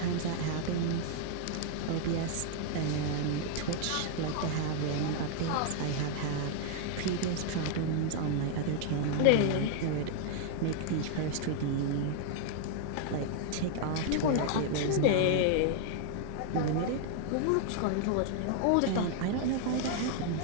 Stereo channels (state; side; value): different; both; correlation 0.00